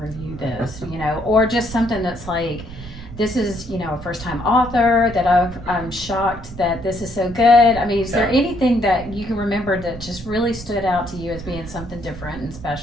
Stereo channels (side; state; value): right; noise; rumble, 14 dB below the sound